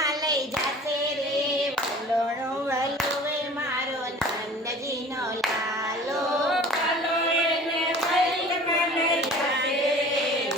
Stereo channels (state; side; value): normal; both; correlation 0.44